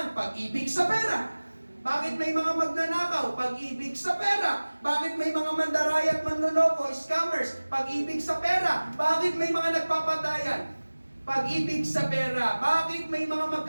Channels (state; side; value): inverted; both; correlation -1.00